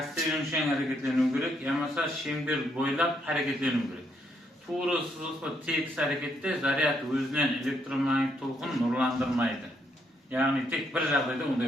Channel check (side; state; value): both; normal; correlation 0.74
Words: yönüşen hareketleniyor gerek. Yamasa şember boylap hareketleniyor gerek. Tuğru sızılıklı tek harekette zaryat özünden elektromanyetik tolkun nurlandırmaydı. Yani tek bir жағдайда